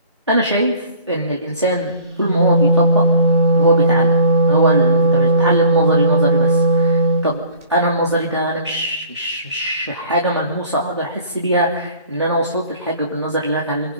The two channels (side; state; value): both; inverted; correlation -0.50